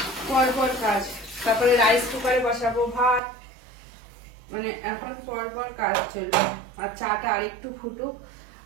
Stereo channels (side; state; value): left; drops out; at 3.2 s